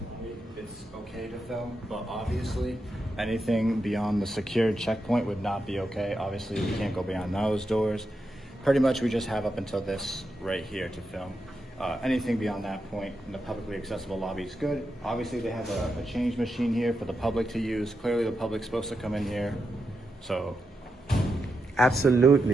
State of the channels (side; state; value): both; normal; correlation 0.86